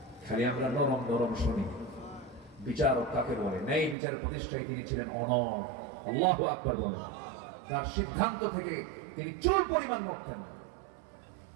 খালি আমরা নরম নরম শুনি। বিচারক কাকে বলে? ন্যায় বিচারের প্রতিষ্ঠায় তিনি ছিলেন অনড়। আল্লাহু আকবার বলেন। তার সিদ্ধান্ত থেকে তিনি চুল পরিমাণ নড়তেন না।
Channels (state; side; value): drops out; left; at 4.0 s